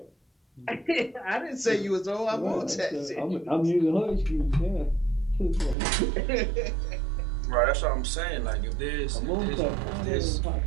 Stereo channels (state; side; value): drops out; left; at 5.8 s